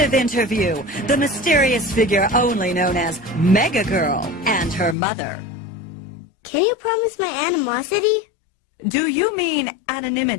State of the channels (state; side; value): drops out; right; at 5.0 s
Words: interview, the mysterious figure only known as Mega Girl and her mother. Can you promise my animosity? Do you mean